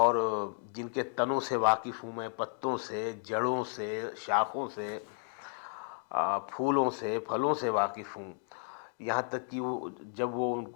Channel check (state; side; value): silent; right; 56 dB below the other